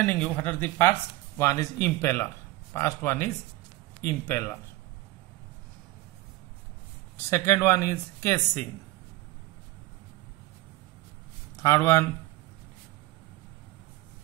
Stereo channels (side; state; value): left; quieter; 18.6 dB